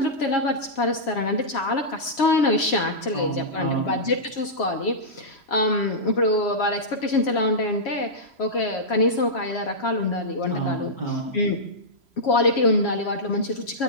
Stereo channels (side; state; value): right; late; 3.0 ms